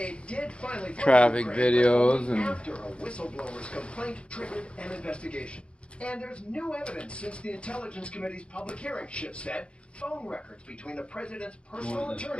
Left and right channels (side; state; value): right; late; 0.058 ms